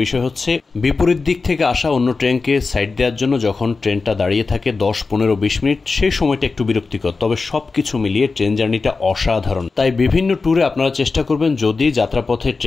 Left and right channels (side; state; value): right; quieter; 4.2 dB